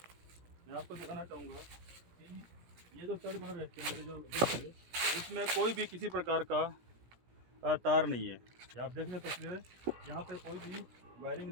मैं आपको दिखाना चाहूँगा कि ये जो स्टड बना रहते हैं जो देखिए, इसमें कोई भी किसी प्रकार का तार नहीं है। ये आप देख रहे हैं तस्वीरें, यहाँ पे कोई भी वायरिंग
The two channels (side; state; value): left; late; 17 ms